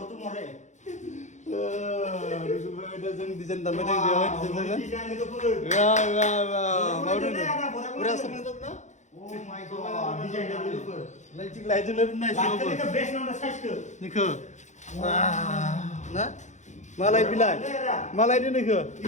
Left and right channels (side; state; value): right; late; 0.34 ms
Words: तू मोरे नुकुल भाई दा जों डिजाइन दानबाय दङ बेयाव डिजाइन लोगोफोर वाह वाह वाह मावदों पुरा समझदों ना Oh my god, design developer. Light developer nice. Actually the best number size ke. Nikho. Na? Malai bilai. Malai ni nikho.